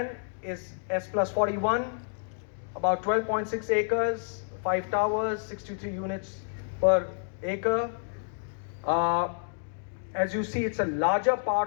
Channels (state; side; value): silent; right; digital silence